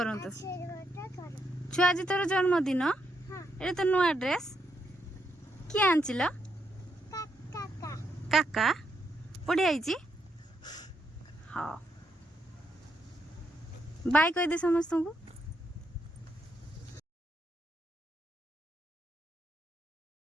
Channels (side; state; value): both; normal; correlation 0.79